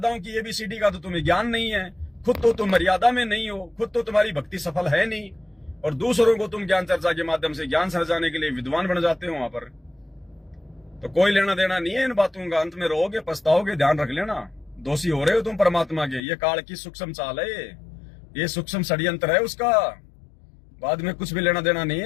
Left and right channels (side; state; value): right; drops out; at 16.2 s